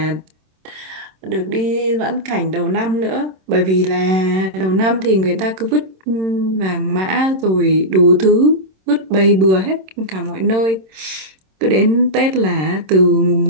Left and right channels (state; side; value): late; left; 26 ms